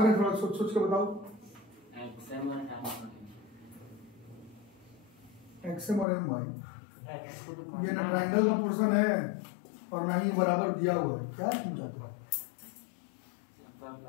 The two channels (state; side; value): drops out; right; at 6.1 s